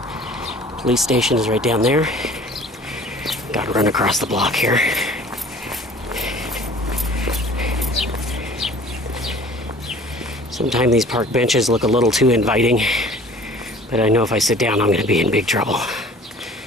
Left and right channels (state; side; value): normal; both; correlation 0.48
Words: Police station is right down there. Gotta run across the block here. Sometimes these park benches look a little too inviting, but I know if I sit down, I'm gonna be in big trouble.